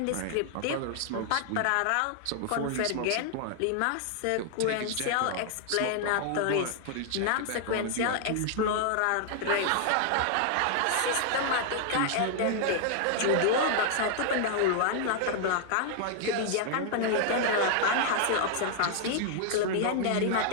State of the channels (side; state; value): both; different; correlation 0.00